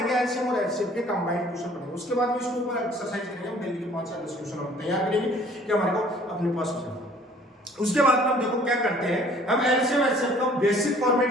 एलसीएम और एचसीएफ के कंबाइंड क्वेश्चन पढ़ेंगे। उसके बाद में इसके ऊपर एक्सरसाइज करेंगे, हम डेली के 5 या 10 क्वेश्चन हम तैयार करेंगे कि हमारे को अपने पास हो जाए। उसके बाद में हम देखो क्या करते हैं, हम एलसीएम एचसीएफ का बेसिक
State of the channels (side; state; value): both; normal; correlation 0.54